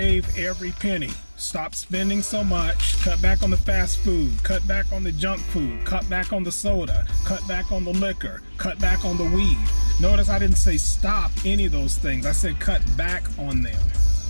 every penny. Stop spending so much. Cut back on the fast food. Cut back on the junk food. Cut back on the soda. Cut back on the liquor. Cut back on the weed. Notice I didn't say stop any of those things. I said cut back on them.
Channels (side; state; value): both; inverted; correlation -1.00